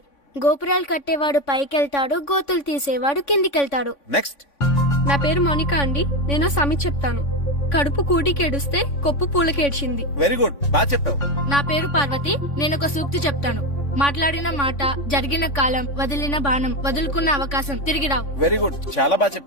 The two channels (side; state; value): right; late; 3.5 ms